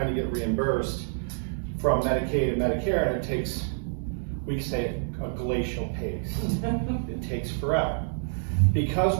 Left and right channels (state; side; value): silent; left; 60 dB below the other